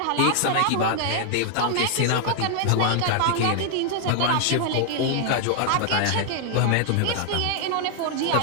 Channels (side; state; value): both; different; correlation 0.00